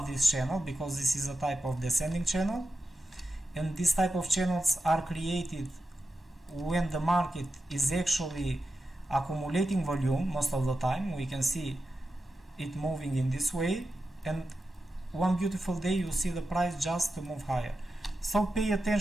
this channel, because this is a type of descending channel, and this type of channels are created when the market is actually accumulating volume. Most of the time we can see it moving in this way, and one beautiful day you see the price just to move higher. So pay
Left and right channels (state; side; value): normal; both; correlation 0.90